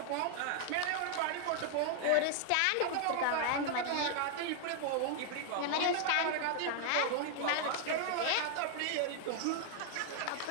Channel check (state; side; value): different; both; correlation 0.00